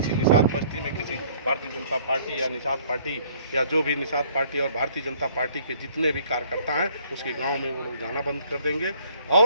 निषाद बस्ती में किसी भारतीय जनता पार्टी या निषाद पार्टी या जो भी निषाद पार्टी और भारतीय जनता पार्टी के जितने भी कार्यकर्ता हैं उसके गांव में वो लोग जाना बंद कर देंगे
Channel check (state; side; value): inverted; both; correlation -0.59